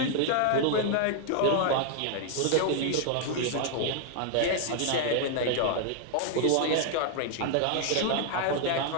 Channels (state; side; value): different; both; correlation 0.00